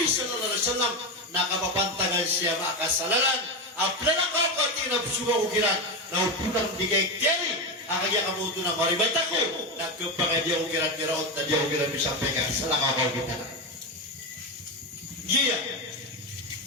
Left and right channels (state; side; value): normal; both; correlation 0.15